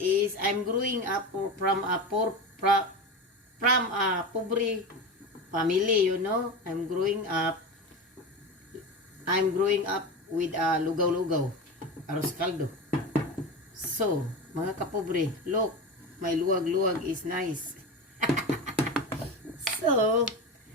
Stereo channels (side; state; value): both; normal; correlation 0.25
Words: I'm growing up from a pobre family, you know. I'm growing up with lugaw-lugaw, arroz caldo. So, mga kapobre, look, my luwag-luwag is nice. So,